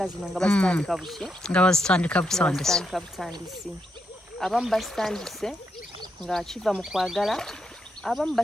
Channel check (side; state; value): both; normal; correlation 0.81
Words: zino nga bazitandika buki? Nga bazitandika butandisi. Abamu basitandise nga kiva mu kwagala, abamu